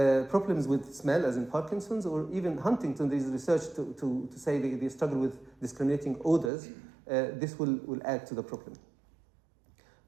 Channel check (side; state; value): left; drops out; at 6.5 s